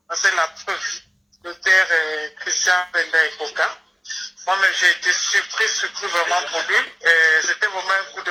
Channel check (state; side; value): identical; both; correlation 1.00